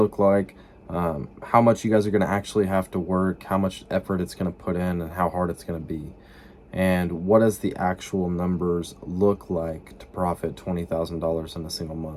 like, how much you guys are going to actually have to work, how much effort it's going to put in, and how hard it's going to be. And what does the actual numbers look like to profit $20,000 in a single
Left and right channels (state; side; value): identical; both; correlation 1.00